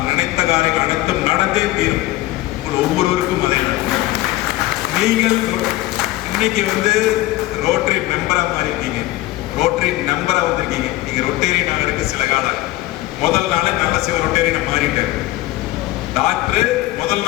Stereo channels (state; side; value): quieter; right; 17.4 dB